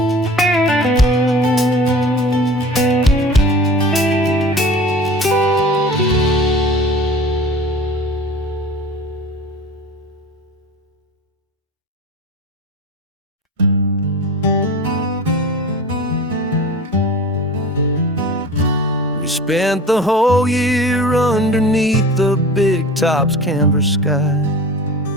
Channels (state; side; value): normal; both; correlation 0.38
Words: Spent the whole year underneath the big top's canvas sky,